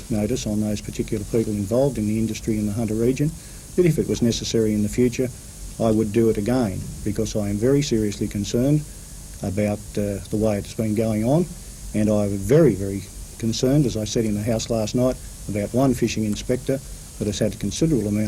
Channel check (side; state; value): both; identical; correlation 1.00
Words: notice on those particular people involved in the industry in the Hunter region that if it was necessary in the future, I would do it again, because I am very seriously concerned about the way it's been going on, and I was very, very concerned, as I said in the House last night, about one fishing inspector that has had a considerable